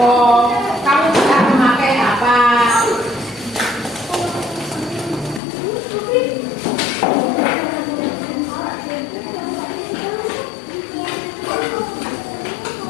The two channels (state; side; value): drops out; right; at 5.4 s